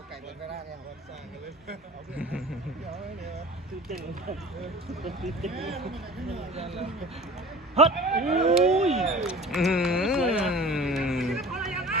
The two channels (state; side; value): normal; both; correlation 0.41